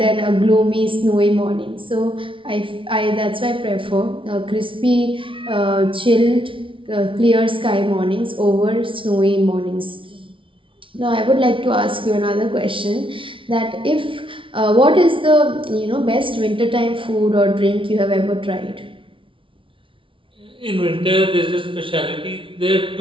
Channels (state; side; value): late; left; 0.25 ms